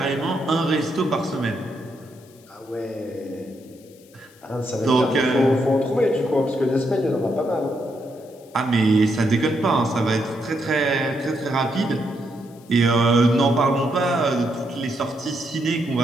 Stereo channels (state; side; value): noise; left; hiss, 28 dB below the sound